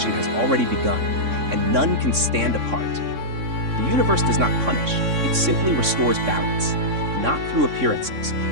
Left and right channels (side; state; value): left; late; 3.6 ms